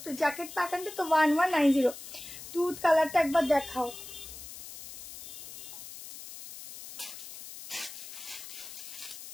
তো, জ্যাকেট প্যাটার্নটা তো 1190। দুধ কালারটা একবার দেখাও।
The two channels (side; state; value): left; noise; hiss, 13 dB below the sound